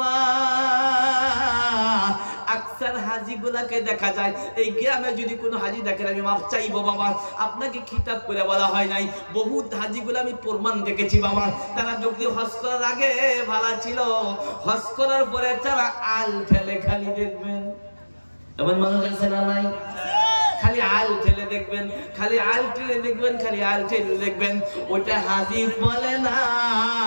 আকসার হাজি গুলাকে দেখা যায়, এই গ্রামে যদি কোনো হাজি দেখেন, আমি মাফ চাইবো বাবা, আপনাকে খিতাব করে বলা হয় নাই। বহুত হাজি গুলো আমি প্রমাণ দেখেছি বাবা, তারা যদি হজ করার আগে ভালো ছিল, হজ করার পরে তারা আল ফেলে। খালি দেখবেন এমন মানুষ আছে না নাই? খালি আল ঠেলে দেখবেন, খালি আল ঠেলে দেখবেন, খালি আল ঠেলে দেখবেন। ওটা হাজি বলে না।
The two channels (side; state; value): both; inverted; correlation -1.00